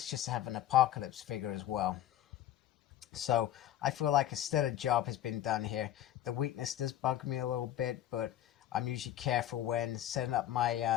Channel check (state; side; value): quieter; right; 12.4 dB